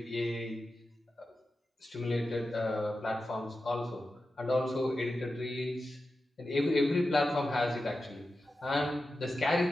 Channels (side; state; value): both; normal; correlation 0.92